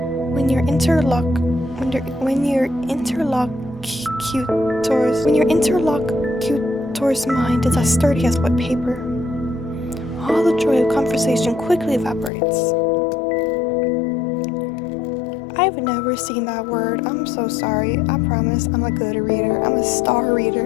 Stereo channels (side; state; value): right; drops out; at 12.3 s